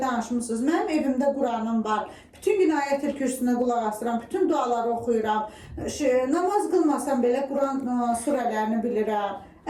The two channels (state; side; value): identical; both; correlation 1.00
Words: danışmısınız. Mənim evimdə Quranım var. Bütün gün ayət-el kürsüsünə qulaq asıram, bütün duaları oxuyuram. Namaz qılmasam belə Quran surələrini bilirəm.